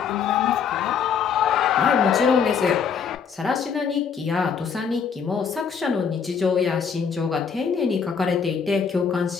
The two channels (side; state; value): right; quieter; 6.6 dB